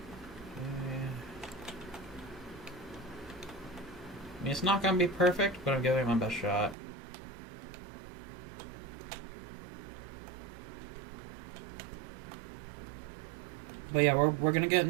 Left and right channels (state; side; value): drops out; left; at 6.8 s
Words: I mean, it's not going to be perfect, but I'm giving it my best shot. But yeah, we're gonna get